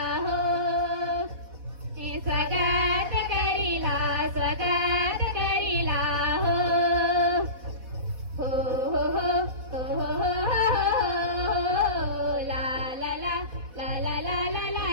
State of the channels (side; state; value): left; late; 4.1 ms